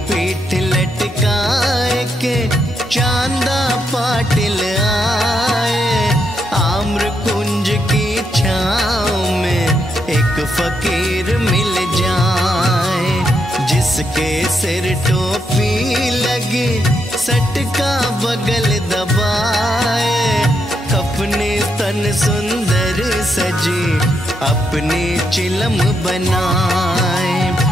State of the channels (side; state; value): both; normal; correlation 0.80